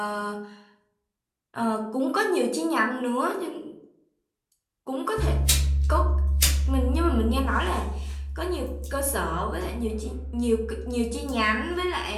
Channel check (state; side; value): identical; both; correlation 1.00